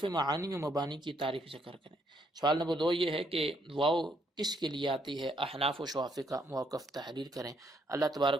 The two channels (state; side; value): normal; both; correlation 0.72